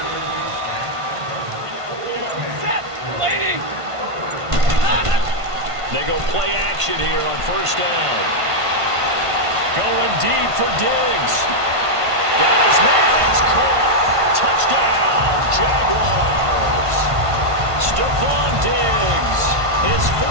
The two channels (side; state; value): left; late; 1.5 ms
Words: They go play action here on 1st down. Going deep for Diggs. Got his man. It's caught. Touchdown, Jaguars. Stephon Diggs. His